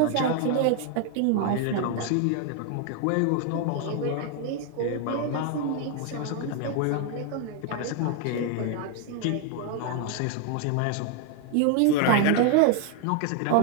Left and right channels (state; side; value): different; both; correlation 0.00